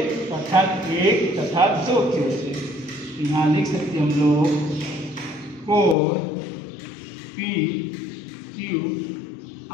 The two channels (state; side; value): drops out; right; at 6.0 s